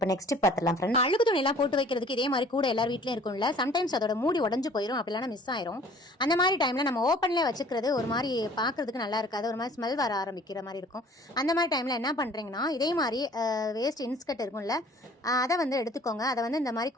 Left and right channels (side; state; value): both; normal; correlation 0.51